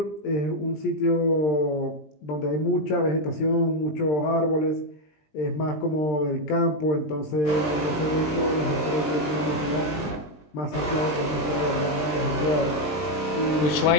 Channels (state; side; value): late; right; 20 ms